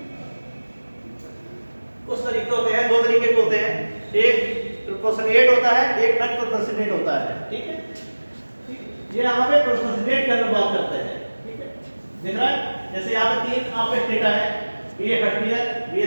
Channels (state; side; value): inverted; both; correlation -1.00